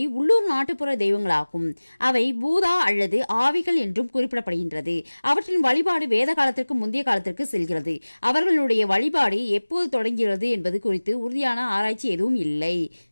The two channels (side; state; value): both; inverted; correlation -1.00